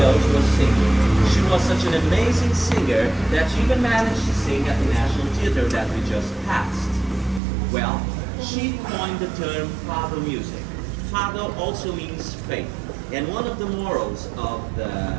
was singing. She was such an amazing singer that she even managed to sing at the National Theatre that we just passed. Well, she coined the term Fado music. Fado also means faith, and one of the morals of the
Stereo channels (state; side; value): drops out; left; at 7.4 s